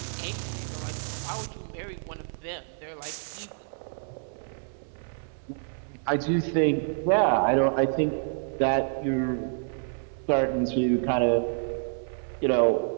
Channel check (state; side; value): silent; left; 59 dB below the other